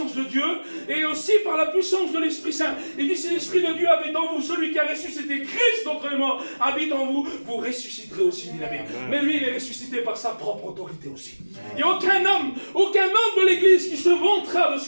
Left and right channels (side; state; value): both; inverted; correlation -1.00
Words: de Dieu et aussi par la puissance de l'Esprit Saint. Il dit, si l'Esprit de Dieu habite en vous, celui qui a ressuscité Christ d'entre les morts habite en vous, vous ressusciterez aussi, dit la Bible. Mais lui, il est ressuscité par sa propre autorité aussi. Il n'y a aucun homme de l'Église qui se vantera de ce